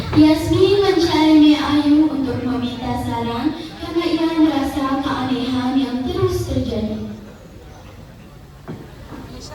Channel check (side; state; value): both; identical; correlation 1.00